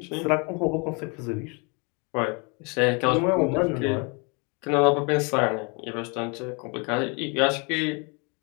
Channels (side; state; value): right; quieter; 32.9 dB